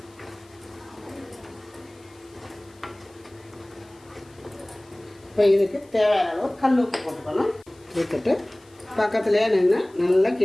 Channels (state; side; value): noise; left; hiss, 29 dB below the sound